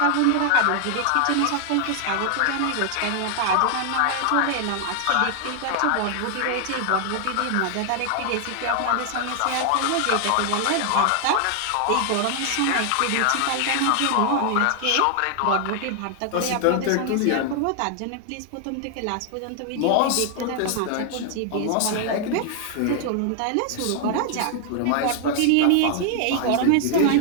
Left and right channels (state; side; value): different; both; correlation 0.00